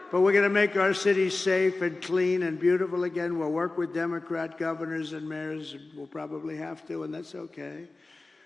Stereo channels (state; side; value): quieter; right; 3.3 dB